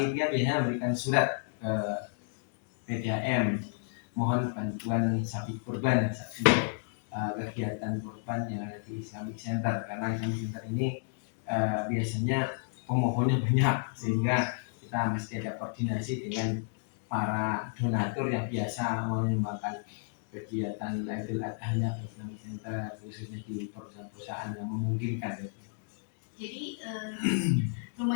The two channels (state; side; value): silent; right; digital silence